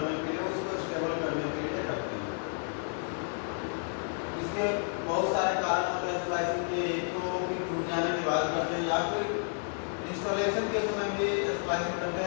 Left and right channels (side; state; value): right; silent; 57 dB below the other